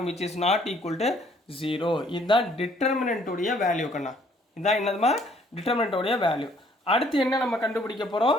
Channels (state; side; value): normal; both; correlation 0.63